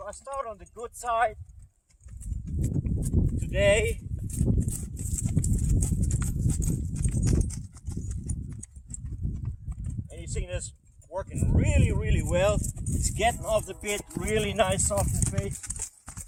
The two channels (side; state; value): both; identical; correlation 1.00